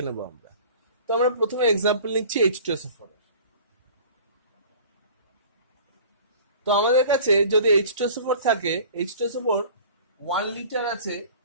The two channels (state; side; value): inverted; both; correlation -0.45